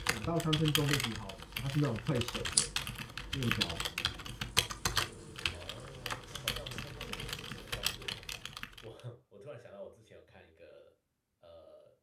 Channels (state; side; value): identical; both; correlation 1.00